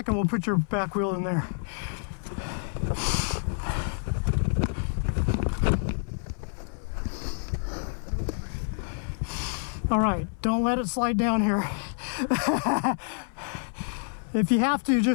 We'll put your back wheel in there. All right, don't let it slide down here. If you have to,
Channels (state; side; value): silent; right; 57 dB below the other